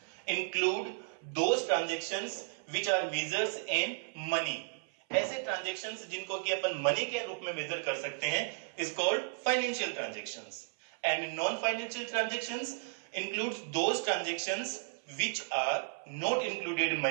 include those transactions which are measures in money. ऐसे ट्रांजेक्शंस जिनको कि अपन मनी के रूप में मेजर कर सकते हैं is called financial transactions. And non-financial transactions includes those transactions which are not included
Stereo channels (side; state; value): left; silent; 55 dB below the other